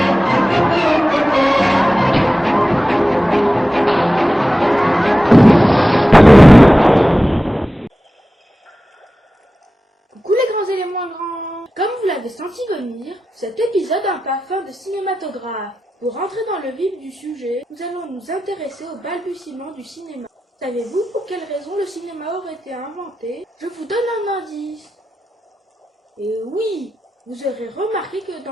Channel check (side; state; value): both; normal; correlation 0.94